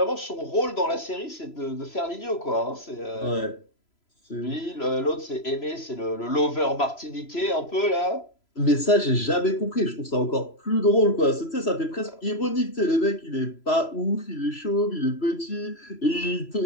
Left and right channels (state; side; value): late; right; 3.0 ms